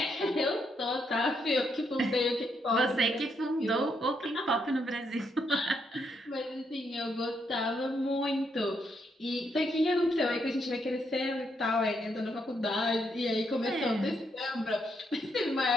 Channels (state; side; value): normal; both; correlation 0.77